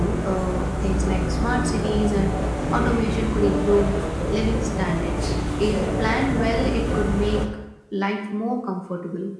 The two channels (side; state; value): both; identical; correlation 1.00